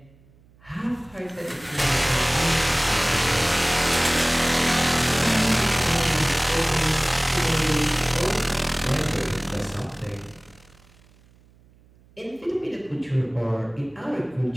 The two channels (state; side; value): noise; right; hum, 29 dB below the sound